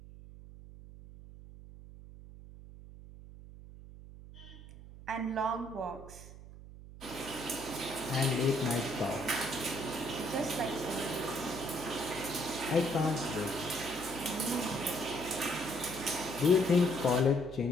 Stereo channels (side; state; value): right; noise; hum, 16 dB below the sound